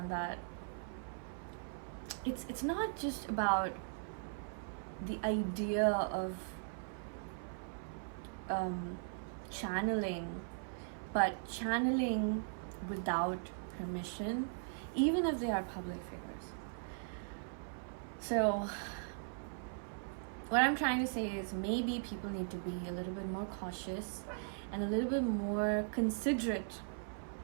that it's not just about the idea of channeling, but channeling without permission, even if they are public figures. So what I'm trying to say is, maybe people need to be a little bit more cautious and a little bit more considerate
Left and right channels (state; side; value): silent; left; 52 dB below the other